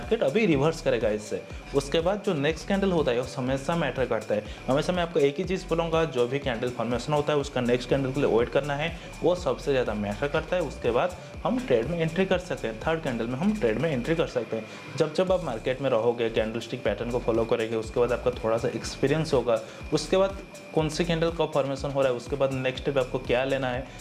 अभी रिवर्स करेगा इससे। उसके बाद जो नेक्स्ट कैंडल होता है वो हमेशा मैटर करता है। हमेशा मैं आपको एक ही चीज़ बोलूँगा, जो भी कैंडल फॉर्मेशन होता है उसका नेक्स्ट कैंडल के लिए वेट करना है, वो सबसे ज़्यादा मैटर करता है। उसके बाद हम ट्रेड में एंट्री कर सकते हैं, थर्ड कैंडल में हम ट्रेड में एंट्री कर सकते हैं। जब जब आप मार्केट में रहोगे, कैंडलस्टिक पैटर्न को फॉलो फॉलो करेंगे, उसके बाद आपका थोड़ा सा एक्सपीरियंस होगा, उसके बाद कौन सी कैंडल कब फॉर्मेशन हो रहा है, उसके बाद नेक्स्ट स्टेप आपको क्या लेना है,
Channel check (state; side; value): identical; both; correlation 1.00